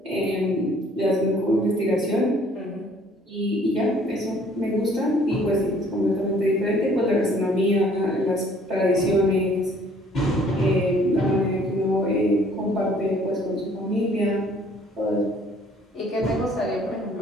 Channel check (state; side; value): normal; both; correlation 0.58